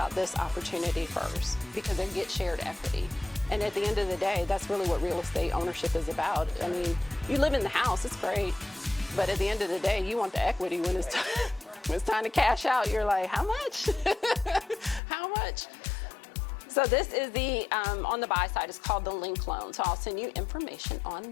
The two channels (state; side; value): drops out; right; at 15.0 s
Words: this opportunity first because they get shared equity. And at the end of the day, that's really what real estate ownership is about. I mean, you live in the house, it's great, but at the end of the day, you want the equity when it's when it's time to cash out. You're like, how much? How much? So this is the, on the buy side, it's called the link loan. So I'll send you information on